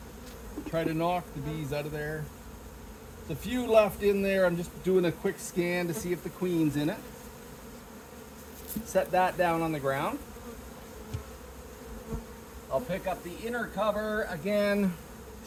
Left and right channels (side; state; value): both; identical; correlation 1.00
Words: Try to knock the bees out of there. There's a few left in there. I'm just doing a quick scan to see if the queen's in it. Set that down on the ground. I'll pick up the inner cover again.